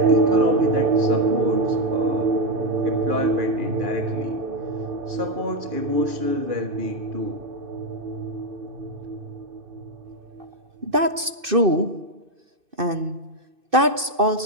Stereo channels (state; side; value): late; left; 2.6 ms